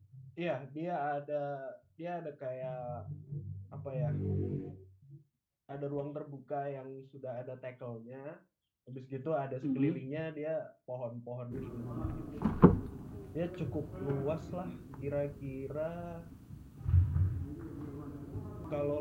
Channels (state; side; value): identical; both; correlation 1.00